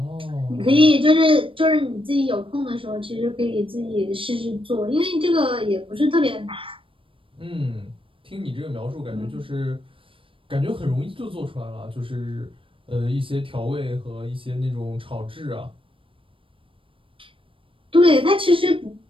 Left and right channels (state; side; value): late; left; 0.25 ms